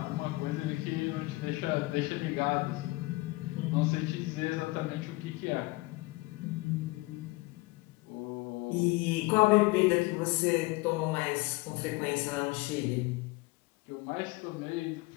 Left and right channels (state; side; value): quieter; right; 22.8 dB